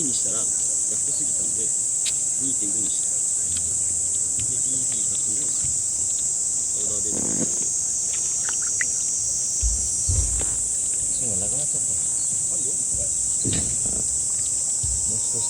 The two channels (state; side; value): identical; both; correlation 1.00